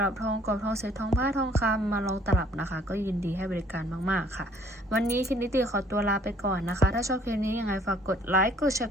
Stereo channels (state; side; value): normal; both; correlation 0.59